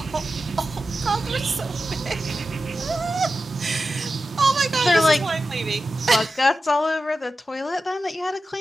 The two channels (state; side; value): normal; both; correlation 0.92